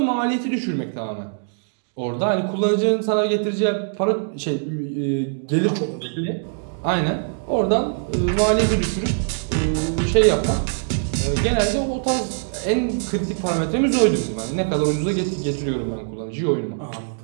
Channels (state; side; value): silent; left; digital silence